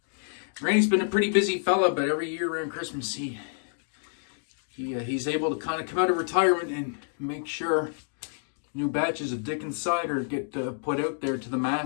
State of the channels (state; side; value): silent; right; digital silence